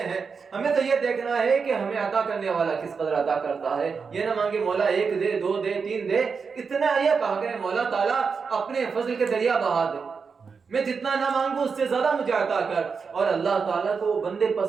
ہیں، ہمیں تو یہ دیکھنا ہے کہ ہمیں عطا کرنے والا کس قدر عطا کرتا ہے۔ یہ نہ مانگے مولا ایک دے، دو دے، تین دے، اتنا یہ کہا کرے مولا تعالیٰ اپنے فضل کے دریا بہا دے، میں جتنا نہ مانگوں اس سے زیادہ مجھے عطا کر۔ اور اللہ تعالیٰ کو وہ بندے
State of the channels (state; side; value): quieter; left; 5.4 dB